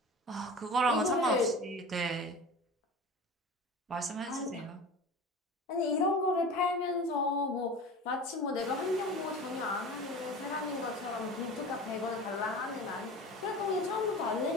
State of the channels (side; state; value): both; normal; correlation 0.34